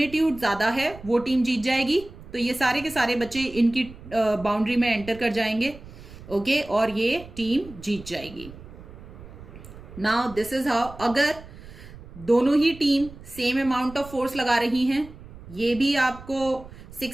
ज्यादा है, वो टीम जीत जाएगी। तो ये सारे के सारे बच्चे इनकी बाउंड्री में एंटर कर जाएंगे। ओके, और ये टीम जीत जाएगी। नाउ दिस इज हाउ, अगर दोनों ही team same amount of force लगा रही हैं, ये भी आपको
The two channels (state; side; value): noise; right; rumble, 17 dB below the sound